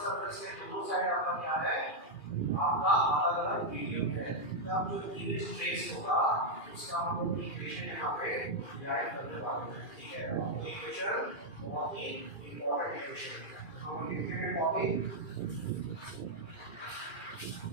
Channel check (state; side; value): late; right; 2.4 ms